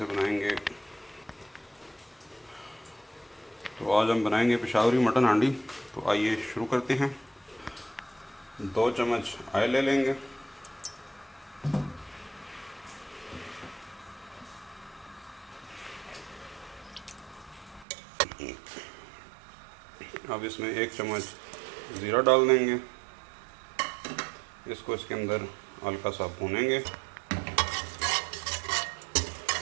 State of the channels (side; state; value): left; drops out; at 17.9 s